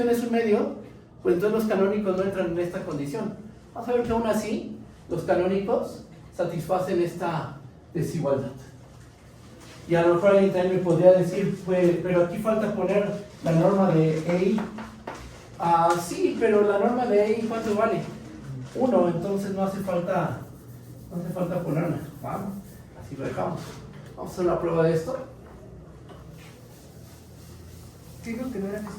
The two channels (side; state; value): both; identical; correlation 1.00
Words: es un medio, pues entonces los canónicos no entran en esta condición. Vamos a ver que aún así, los canónicos satisfacen esta desigualdad. Y a lo mejor alguien también me podría decir, pues, pero aquí falta poner la norma de EI. Sí, pero la norma de EI, ¿cuánto vale? 1, entonces no hace falta ponerla. Vamos, así lo dejamos. Vamos a hacer la prueba de esto. ¿Qué dijo que no era